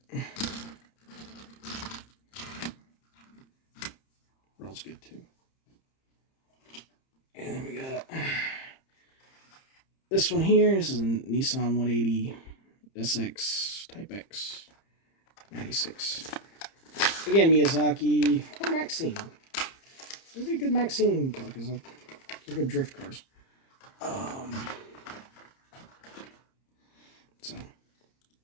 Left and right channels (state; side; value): late; right; 30 ms